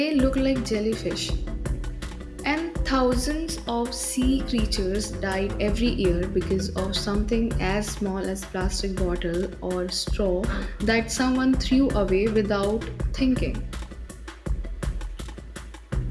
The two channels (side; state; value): both; identical; correlation 1.00